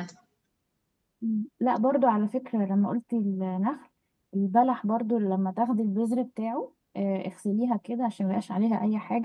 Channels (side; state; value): both; identical; correlation 1.00